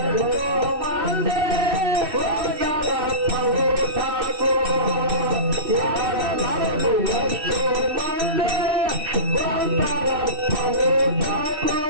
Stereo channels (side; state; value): left; late; 2.6 ms